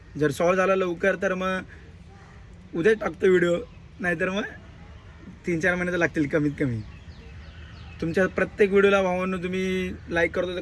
जर सॉल्व झाला लवकर तर मग उद्याच टाकतो व्हिडिओ, नाहीतर मग 3-4 महिने तर लागतील कमीत कमी. तुमच्या प्रत्येक व्हिडिओला भावांनो तुम्ही लाईक करतो तर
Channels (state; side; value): identical; both; correlation 1.00